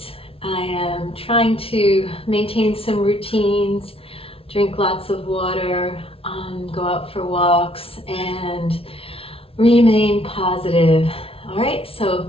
I am trying to maintain some routines, drink lots of water, go out for walks, and remain positive. All right, so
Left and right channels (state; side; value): late; right; 0.27 ms